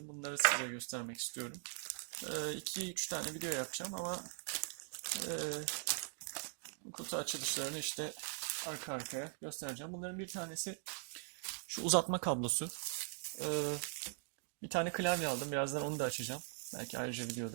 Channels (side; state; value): left; silent; 50 dB below the other